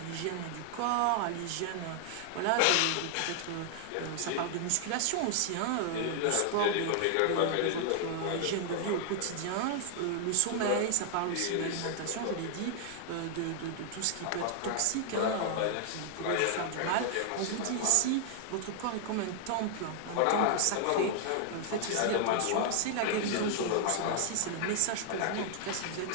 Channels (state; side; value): different; both; correlation 0.00